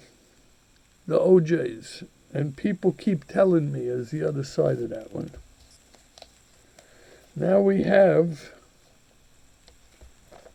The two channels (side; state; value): both; identical; correlation 1.00